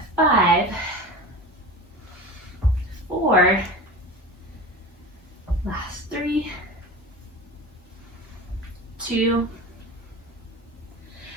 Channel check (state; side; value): normal; both; correlation 0.31